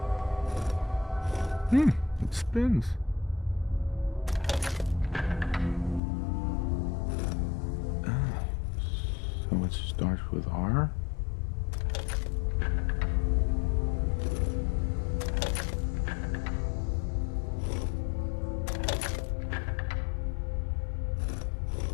It spins. So it starts with R?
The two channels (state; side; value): drops out; right; at 6.0 s